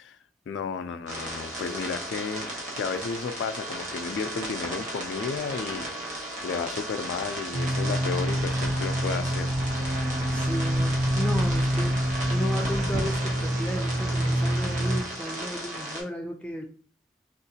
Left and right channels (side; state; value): both; normal; correlation 0.71